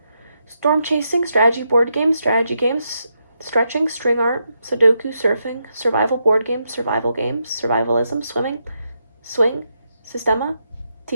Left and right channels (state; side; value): inverted; both; correlation -0.82